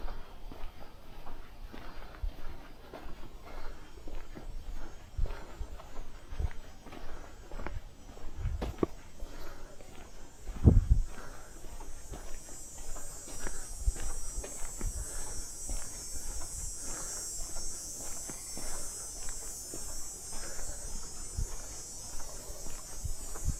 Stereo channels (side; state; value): both; identical; correlation 1.00